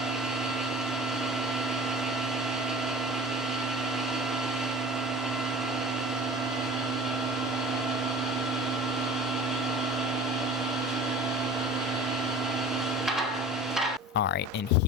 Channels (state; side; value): normal; both; correlation 0.41